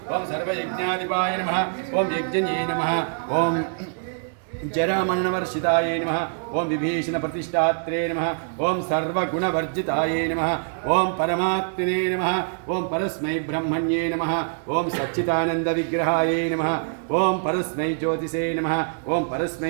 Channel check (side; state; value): left; silent; digital silence